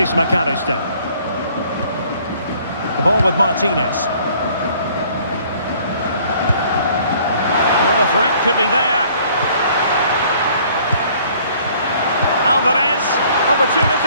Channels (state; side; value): inverted; both; correlation -0.58